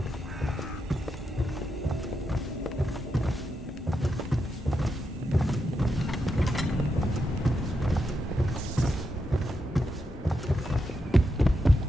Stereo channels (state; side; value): normal; both; correlation 0.85